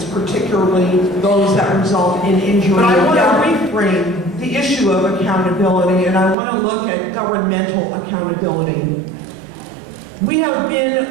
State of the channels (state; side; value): drops out; left; at 6.4 s